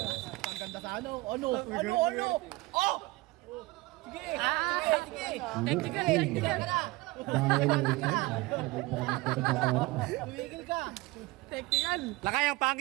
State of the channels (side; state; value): left; quieter; 21.4 dB